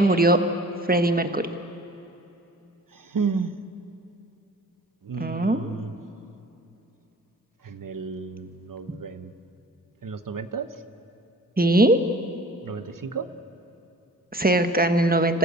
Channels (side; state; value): both; normal; correlation 0.47